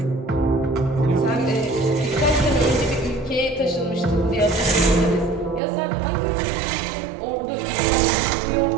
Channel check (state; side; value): drops out; left; at 5.6 s